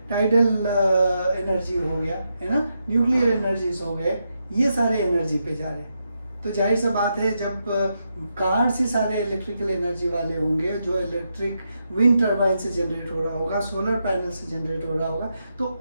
टाइडल एनर्जी हो गया, है ना, न्यूक्लियर एनर्जीज हो गए, ये सारे एनर्जी पे जा रहे हैं। तो जाहिर सा बात है जब कार से सारे इलेक्ट्रिकल एनर्जी वाले होंगे, जो इलेक्ट्रिक विंड टर्बाइन से जनरेट हो रहा होगा, सोलर पैनल से जनरेट हो रहा होगा, तो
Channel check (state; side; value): inverted; both; correlation -0.84